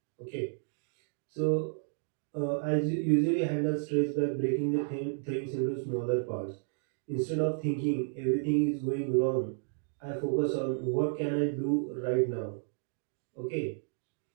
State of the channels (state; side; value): silent; left; digital silence